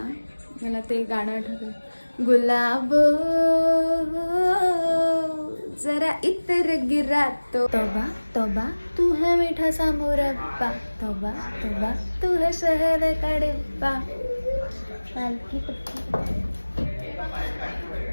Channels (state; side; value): inverted; both; correlation -1.00